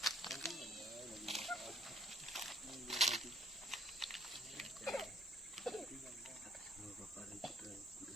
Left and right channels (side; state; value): both; normal; correlation 0.63